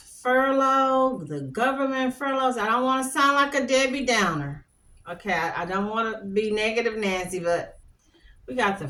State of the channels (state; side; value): identical; both; correlation 1.00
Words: furlough, the government furloughs, I don't want to sound like a Debbie Downer. Okay, I don't want to be negative Nancy, but we got the